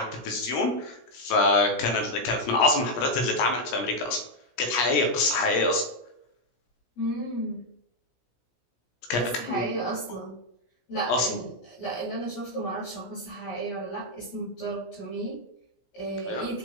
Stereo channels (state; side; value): late; right; 17 ms